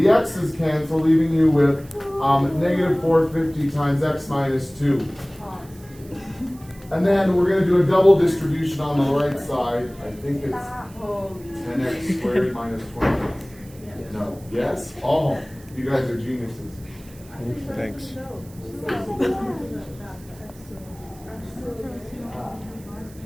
X's cancel, leaving you with negative 450 times X minus 2. And then we're going to do a double distribution on the right side. I think it's 10x squared minus 20x. No. Yes? Oh, you guys are geniuses. Thanks.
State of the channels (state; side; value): noise; right; hiss, 24 dB below the sound